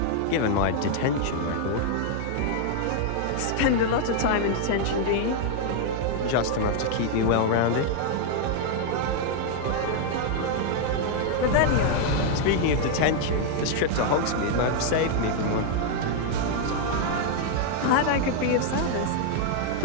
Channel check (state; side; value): different; both; correlation 0.00